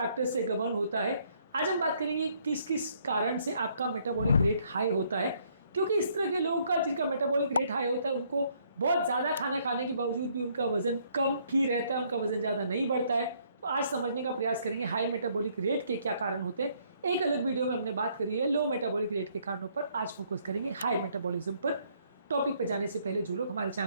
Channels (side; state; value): both; inverted; correlation -0.67